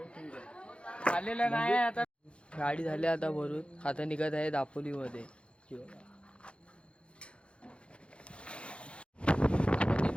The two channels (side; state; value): right; late; 0.058 ms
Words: आलेलं नाही आता. गाडी झाली आता भरून. आता निघत आहे दापोलीमध्ये.